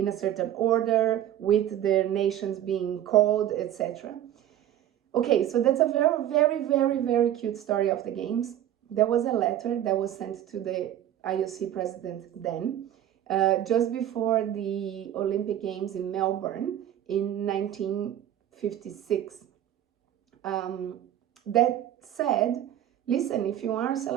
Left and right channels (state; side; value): quieter; left; 11.7 dB